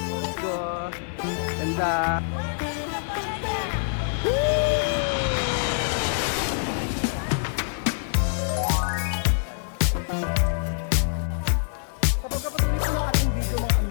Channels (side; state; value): right; silent; digital silence